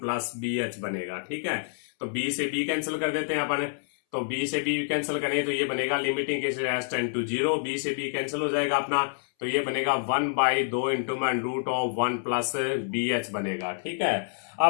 bh बनेगा। ठीक है, तो b से b कैंसिल कर देते हैं अपन, तो b से b कैंसिल करें तो ये बनेगा limiting cases h tend to 0, b से b कैंसिल हो जाएगा अपना, तो ये बनेगा 1/2 इंटू में रूट ऑफ 1 प्लस BH बनेगा। ठीक है,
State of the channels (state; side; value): silent; right; 60 dB below the other